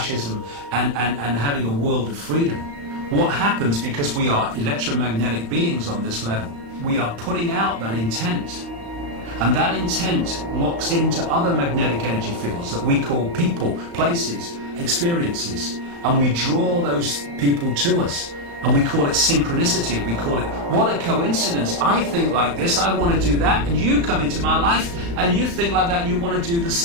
and having a world of freedom. What happens, because we are electromagnetic beings on this level, we are putting out that intent. And that intent locks into other magnetic energy fields that we call people, places, experiences, and we draw those people to us. And we call it synchronicity. We call it, what a coincidence. I think like this, I want to do that, and you come into my life, and you think like that, and you want to do the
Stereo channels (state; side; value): late; left; 35 ms